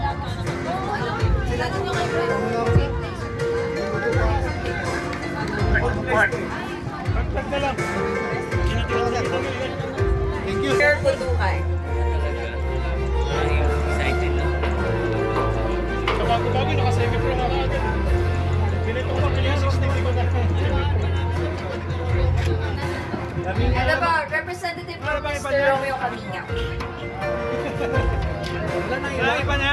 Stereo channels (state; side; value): identical; both; correlation 1.00